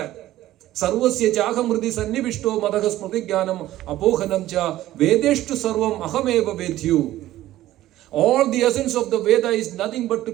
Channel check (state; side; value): quieter; left; 14.7 dB